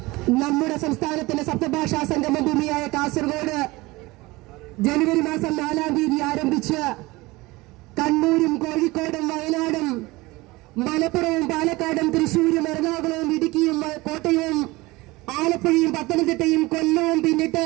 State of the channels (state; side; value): quieter; left; 21.5 dB